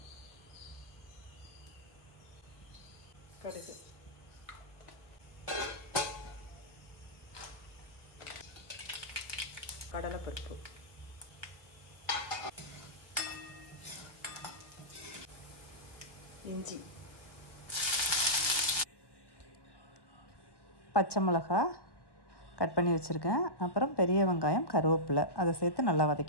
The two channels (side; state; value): right; late; 1.1 ms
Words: கடுகு, கடலைப்பருப்பு, இஞ்சி, பச்சை மிளகாய் கட் பண்ணி வச்சுருக்கேன். அப்புறம் பெரிய வெங்காயம், கருவேப்பிலை அதை சேர்த்து நல்லா